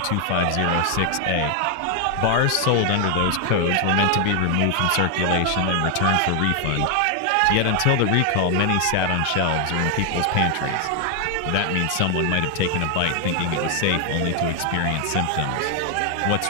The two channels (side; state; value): both; different; correlation 0.00